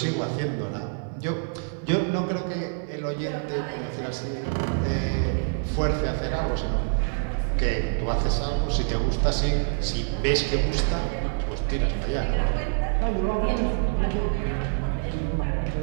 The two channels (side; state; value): left; silent; 57 dB below the other